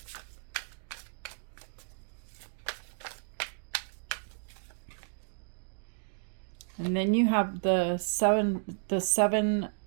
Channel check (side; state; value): left; silent; digital silence